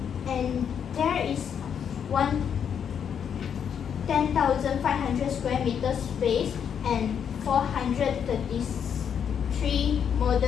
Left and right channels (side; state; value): right; quieter; 7.9 dB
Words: and there is 10,500 square meters space and 433